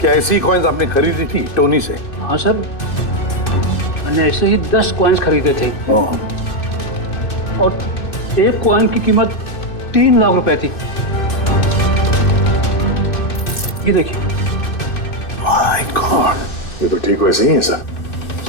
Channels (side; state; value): right; late; 2.6 ms